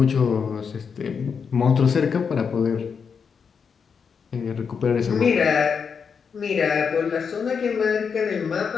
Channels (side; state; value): right; quieter; 6.2 dB